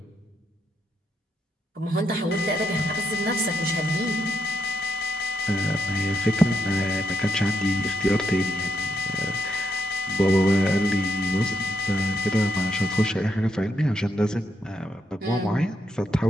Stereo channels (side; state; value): both; normal; correlation 0.80